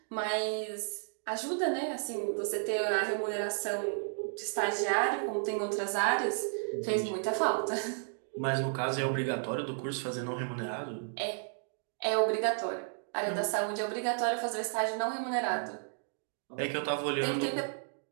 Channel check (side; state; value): left; silent; digital silence